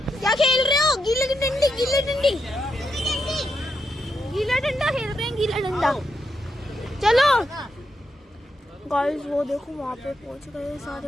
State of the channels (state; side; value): normal; both; correlation 0.83